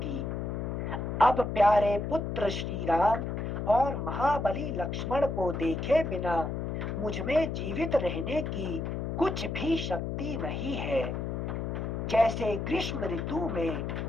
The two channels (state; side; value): noise; left; hum, 3 dB below the sound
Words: अब प्यारे पुत्र श्री राम और महाबली लक्ष्मण को देखे बिना मुझ में जीवित रहने की कुछ भी शक्ति नहीं है। जैसे ग्रीष्म ऋतु में